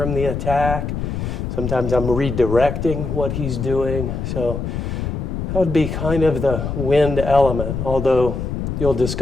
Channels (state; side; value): noise; left; rumble, 4 dB below the sound